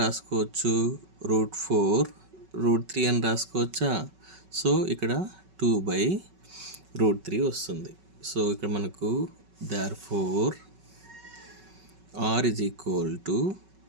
రాసుకోవచ్చు √4 √3 అని రాసుకోవచ్చా? సో ఇక్కడ 2/√3 వస్తుంది. సో ఇక్కడ మనకు therefore r is equal to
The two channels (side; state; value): left; late; 5.3 ms